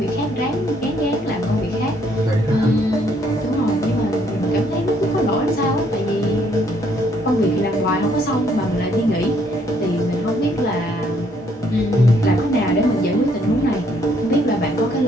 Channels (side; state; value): both; normal; correlation 0.68